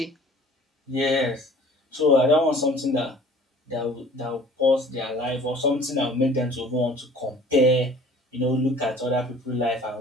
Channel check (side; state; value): both; normal; correlation 0.49